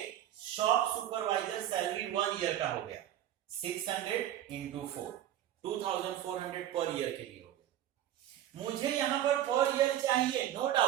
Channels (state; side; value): quieter; left; 12.0 dB